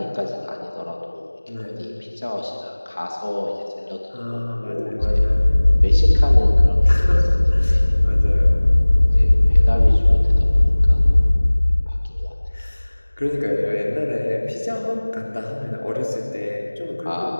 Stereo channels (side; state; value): both; inverted; correlation -1.00